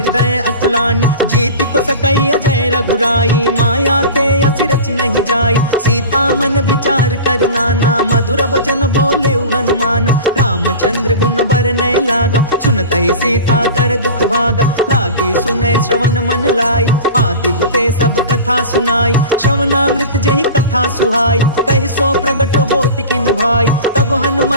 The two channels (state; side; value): inverted; both; correlation -0.34